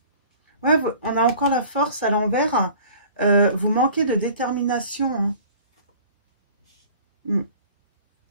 Ouais, on a encore la force à l'envers, vous manquez de détermination, hein. Mm.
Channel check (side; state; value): both; inverted; correlation -0.46